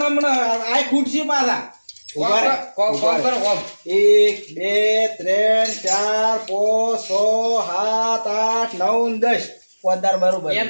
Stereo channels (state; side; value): inverted; both; correlation -1.00